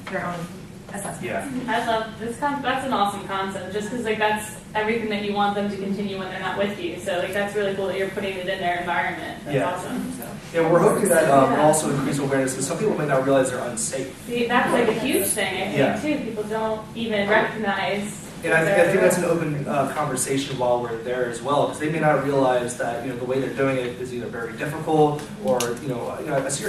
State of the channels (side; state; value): both; identical; correlation 1.00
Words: their own assessment. Yeah. I love this. That's an awesome concept. Just because that's everything that you want them to continue when they're not with you. So that's really cool that you're putting it in their environment. That's awesome. So. Yeah, we're hoping that will also increase awareness because some people may not realize they're unsafe. See, that's a huge thing, I think, too. People don't even recognize. And I think that's an open conversation while we're there as well, because they may not realize that the way they're doing it is either very difficult or I see